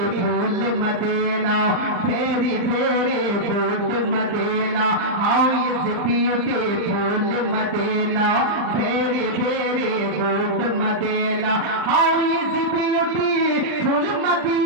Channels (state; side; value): late; left; 39 ms